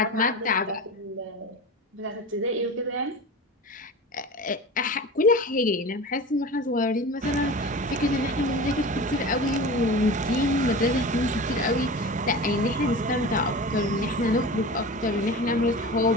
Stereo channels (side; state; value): both; normal; correlation 0.33